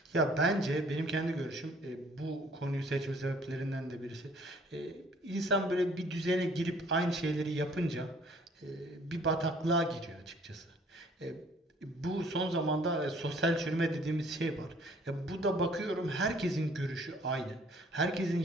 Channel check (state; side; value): normal; both; correlation 0.57